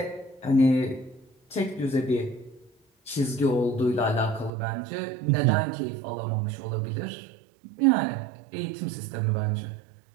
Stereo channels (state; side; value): drops out; left; at 4.5 s